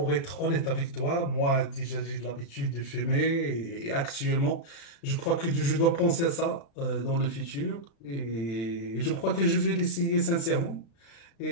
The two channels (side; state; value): right; late; 35 ms